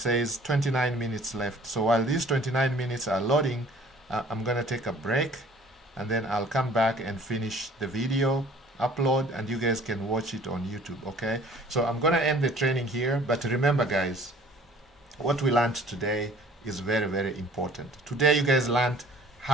29 minutes left. So while these 29 minutes are loading, I'm gonna take a break, and then I'll come back and finish the video, upload, and you guys can watch it on YouTube, okay? So I'm gonna end the training here, but remember guys, what we learned today is very, very important. Today you guys learned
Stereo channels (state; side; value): normal; both; correlation 0.52